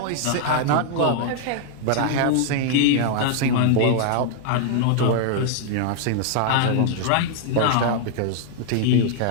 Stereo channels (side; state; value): both; different; correlation -0.01